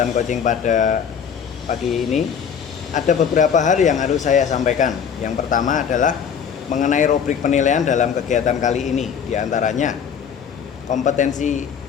coaching pada pagi ini, ada beberapa hal yang harus saya sampaikan. Yang pertama adalah mengenai rubrik penilaian dalam kegiatan kali ini. Di antaranya kompetensi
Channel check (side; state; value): right; quieter; 7.4 dB